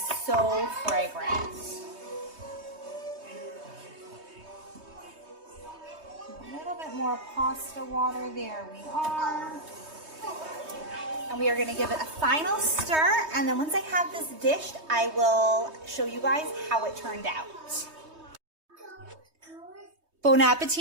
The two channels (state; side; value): late; left; 3.2 ms